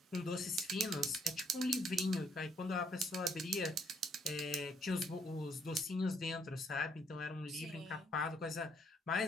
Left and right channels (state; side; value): normal; both; correlation 0.68